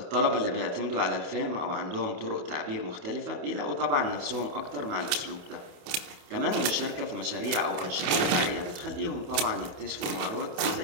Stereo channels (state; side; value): late; left; 28 ms